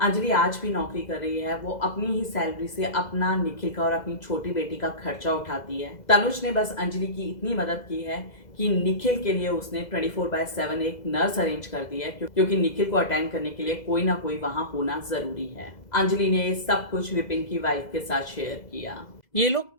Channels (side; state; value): right; late; 2.0 ms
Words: अंजलि आज भी नौकरी कर रही है, वो अपनी ही सैलरी से अपना, निखिल का और अपनी छोटी बेटी का खर्चा उठाती है। तनुज ने बस अंजलि की इतनी मदद की है कि निखिल के लिए उसने 24/7 एक नर्स अरेंज कर दी है, क्योंकि निखिल को अटेंड करने के लिए कोई ना कोई वहां होना जरूरी है। अंजलि ने ये सब कुछ विपिन की वाइफ के साथ शेयर किया। ये